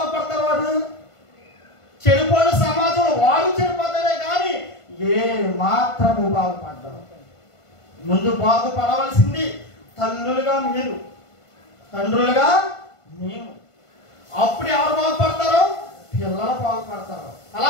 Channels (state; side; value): late; right; 1.5 ms